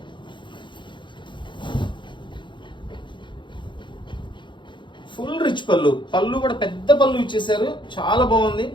ఫుల్ రిచ్ పళ్ళు, పళ్ళు కూడా పెద్ద పళ్ళు ఇచ్చేసారు, చాలా బాగుంది.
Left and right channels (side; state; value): right; late; 0.23 ms